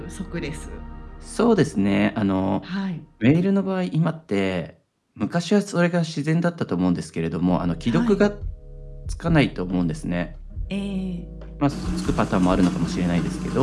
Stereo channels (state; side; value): identical; both; correlation 1.00